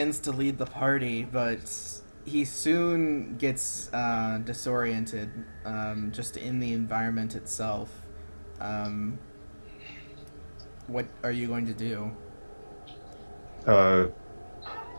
to lead the party, but he soon gets disoriented just in the environment itself. What are you going to do?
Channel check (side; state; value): both; inverted; correlation -1.00